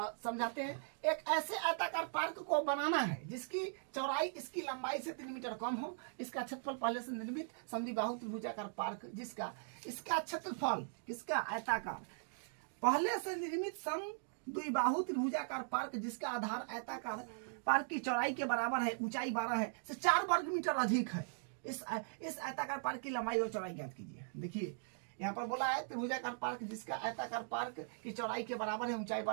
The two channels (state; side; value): silent; left; digital silence